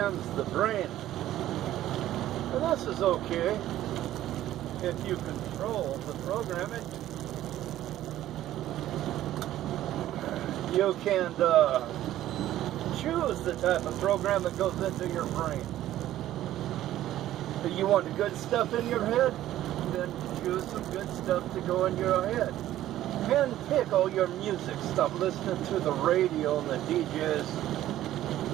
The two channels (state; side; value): quieter; left; 13.5 dB